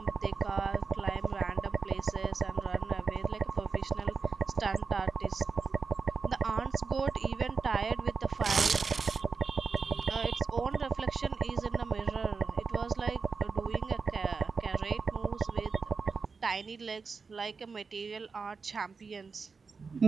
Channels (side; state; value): left; quieter; 4.9 dB